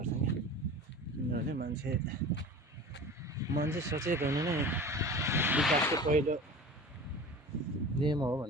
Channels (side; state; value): both; normal; correlation 0.37